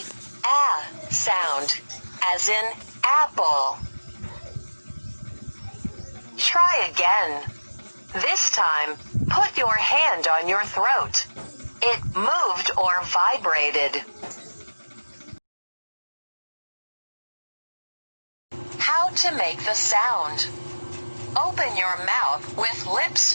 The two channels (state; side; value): inverted; both; correlation -1.00